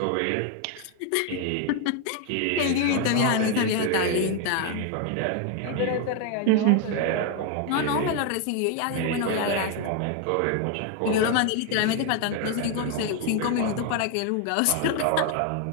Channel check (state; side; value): different; both; correlation 0.01